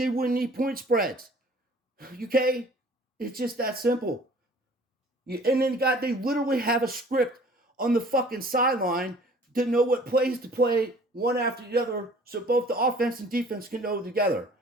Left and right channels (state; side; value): normal; both; correlation 0.51